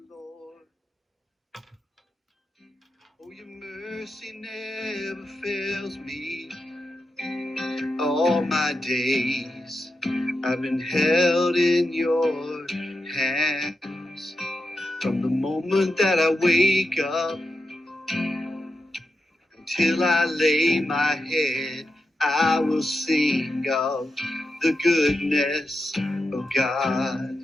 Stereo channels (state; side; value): normal; both; correlation 0.88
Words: Lord. Oh, your mercy never fails me. All my days I've been held in your hands. From the moment that I wake up until I lay my head, I will sing of the goodness of God.